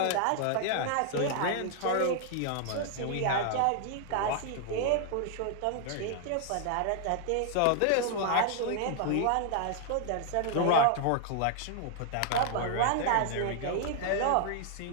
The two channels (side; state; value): both; different; correlation 0.00